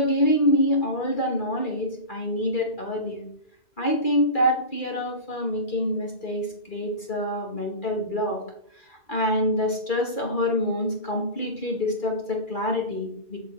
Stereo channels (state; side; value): late; right; 2.4 ms